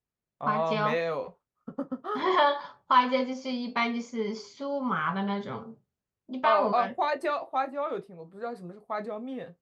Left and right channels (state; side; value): identical; both; correlation 1.00